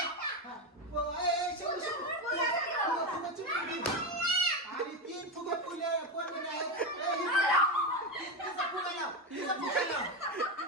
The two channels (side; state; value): both; normal; correlation 0.13